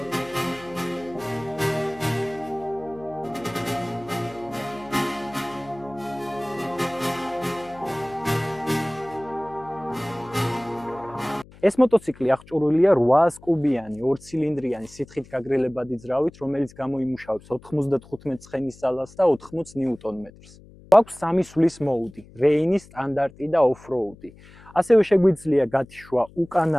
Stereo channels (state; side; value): noise; left; hum, 23 dB below the sound